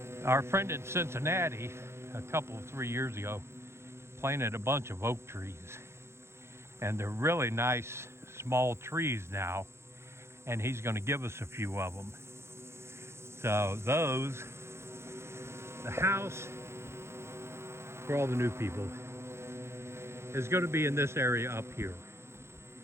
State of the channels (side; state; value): left; late; 0.13 ms